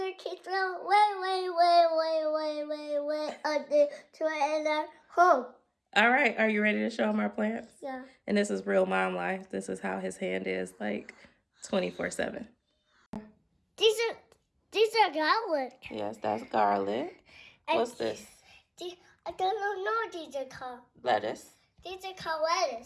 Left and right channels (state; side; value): identical; both; correlation 1.00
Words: kids throw way under to in our home. All right. Are you ready to show him our plants? Yeah. And this is real mom life. This is how his hand is like 24/7. These are garlic. Yes, that's garlic. What's this? I don't know what these are called. Lettuce. These are called